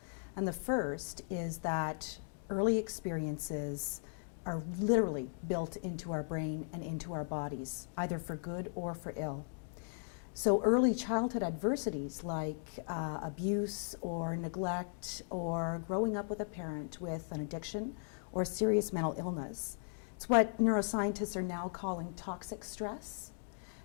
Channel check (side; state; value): right; silent; digital silence